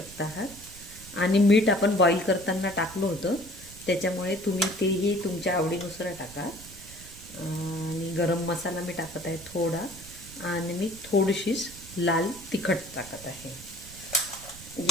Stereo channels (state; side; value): noise; right; rumble, 18 dB below the sound